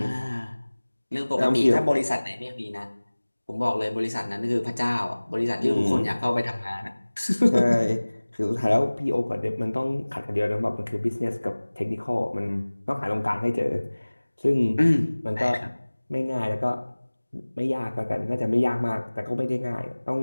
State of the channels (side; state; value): both; inverted; correlation -1.00